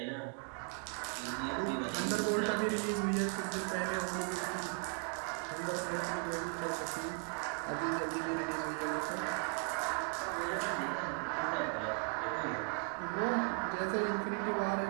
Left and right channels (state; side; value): quieter; left; 38.2 dB